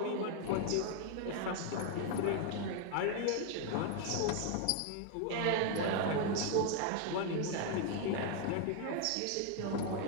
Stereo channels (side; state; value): both; different; correlation 0.00